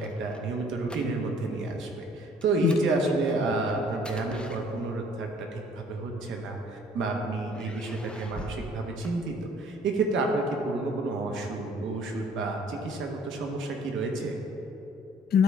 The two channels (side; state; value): both; normal; correlation 0.56